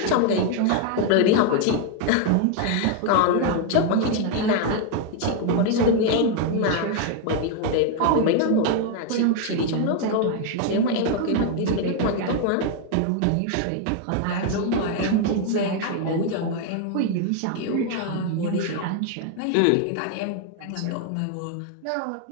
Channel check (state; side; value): different; both; correlation 0.00